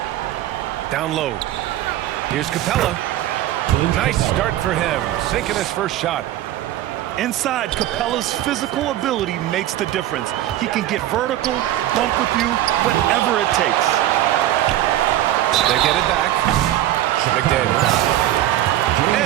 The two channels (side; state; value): left; quieter; 13.5 dB